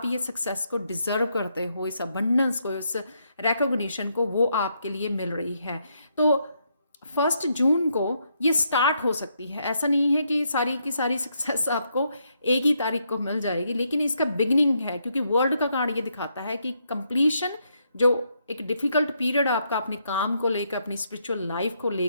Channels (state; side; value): inverted; both; correlation -0.77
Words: ये सक्सेस को डिज़र्व करते हो, इस अबंडेंस को, इस रिकॉग्निशन को, वो आपके लिए मिल रही है। तो 1 जून को ये स्टार्ट हो सकती है, ऐसा नहीं है कि सारी की सारी सक्सेस आपको एक ही तारीख को मिल जाएगी, लेकिन इसका बिगिनिंग है, क्योंकि वर्ल्ड का कार्ड ये दिखाता है कि कंप्लीशन, जो एक डिफिकल्ट पीरियड आपका अपने काम को लेकर, अपनी स्पिरिचुअल लाइफ को